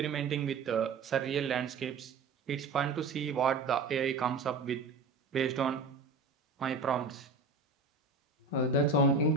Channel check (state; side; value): quieter; left; 4.1 dB